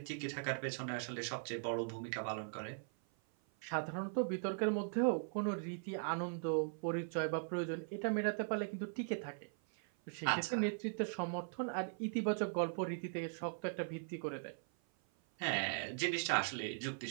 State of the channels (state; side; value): silent; left; 51 dB below the other